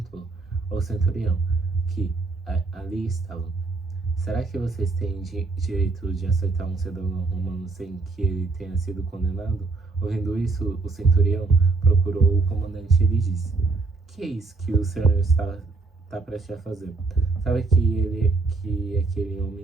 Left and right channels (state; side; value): quieter; left; 3.9 dB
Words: ao centurião, que ali estava: será que vocês têm direito de açoitar um cidadão romano sem que ele tenha sido condenado? Ouvindo isso, o centurião procurou o comandante e lhe disse: que é isso que o senhor está prestes a fazer? Sabe que aquele